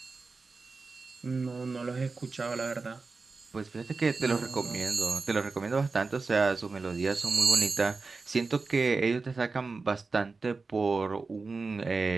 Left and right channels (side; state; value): left; quieter; 4.1 dB